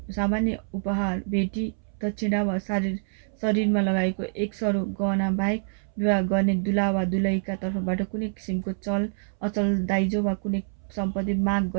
सामान्य उपहार, भेटी, दक्षिणा वा शरीरमा लगाएको एक सरो गहना बाहेक विवाह गर्ने दुला वा दुलहीका तर्फबाट कुनै किसिमको चल अचल दाइजो वा कुनै सम्पत्ति माग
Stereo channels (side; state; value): left; silent; 61 dB below the other